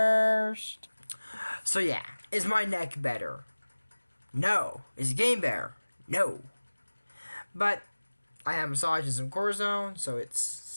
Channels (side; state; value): both; inverted; correlation -1.00